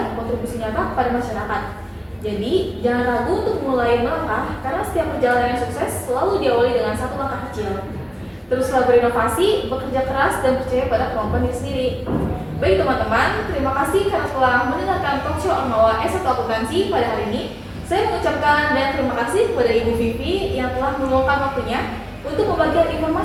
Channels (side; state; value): both; identical; correlation 1.00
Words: kontribusi nyata kepada masyarakat. Jadi, jangan ragu untuk mulai melangkah, karena setiap perjalanan yang sukses selalu diawali dengan satu langkah kecil. Teruslah berinovasi, bekerja keras, dan percaya pada kemampuan diri sendiri. Baik teman-teman, terima kasih karena telah mendengarkan talk show Ormawa S1 Akuntansi pada hari ini. Saya mengucapkan dan terima kasih kepada Ibu Vivi yang telah meluangkan waktunya untuk membagikan